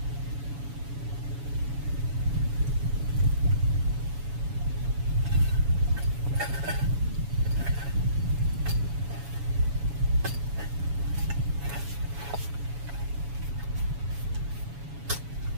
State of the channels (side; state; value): left; late; 7.1 ms